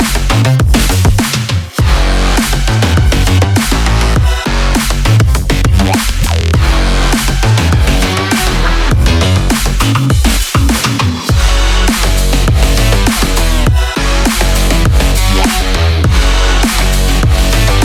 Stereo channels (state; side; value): identical; both; correlation 1.00